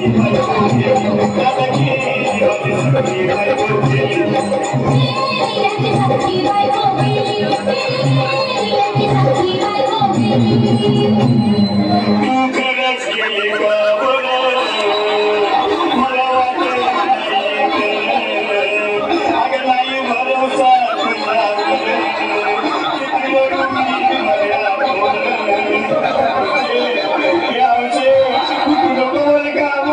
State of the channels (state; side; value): identical; both; correlation 1.00